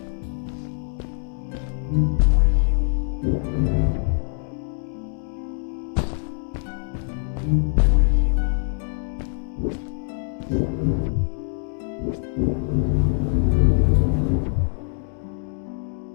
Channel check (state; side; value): silent; right; 63 dB below the other